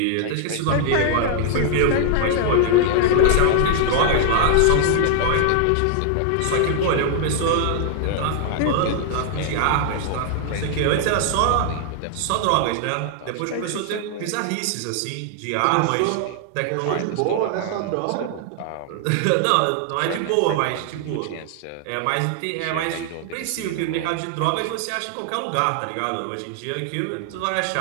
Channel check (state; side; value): different; both; correlation 0.00